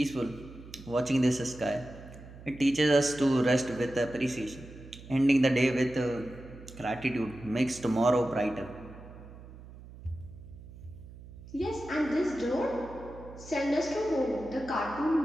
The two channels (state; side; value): noise; right; hum, 17 dB below the sound